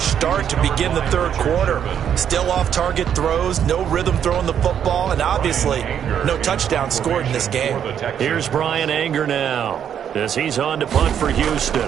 start to begin the 3rd quarter. Still off-target throws, no rhythm throwing the football, and obviously no touchdown scored in this game. Here's Bryan Anger now as he's on to punt for Houston.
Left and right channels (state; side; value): quieter; left; 8.9 dB